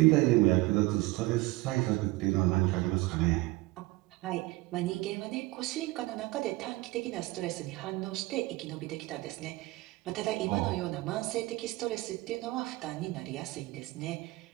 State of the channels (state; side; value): quieter; left; 20.7 dB